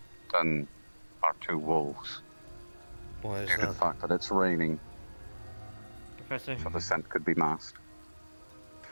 than our two wolves. Why is Due to the that? fact that it's raining, Professor, so the scent could be masked.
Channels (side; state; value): both; inverted; correlation -1.00